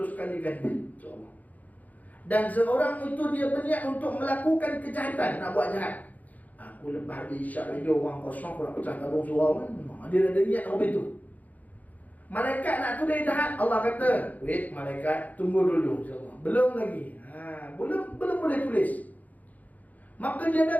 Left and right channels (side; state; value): right; late; 0.077 ms